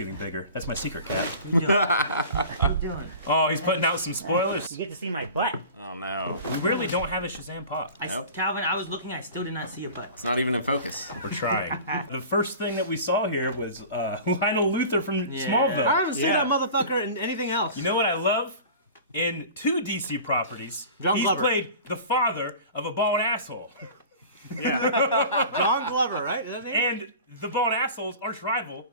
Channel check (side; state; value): both; inverted; correlation -0.39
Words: bigger. That's my secret, Cat. What are you doing? Oh, he's putting out some spoilers. You get to see my butt. Oh no. We really don't have a Shazam pop. Nope. Calvin, I was looking, I still did not see a butt. It's not even in focus. We're trying. The first thing that we saw here was Lionel Luthor from Yeah. Smallville. I haven't seen that motherfucker in anything else. You know what I love? In 2 DC properties, John he's Glover. played the father of a bald asshole. John Glover, right? Is that his name? And the bald asshole's arch rival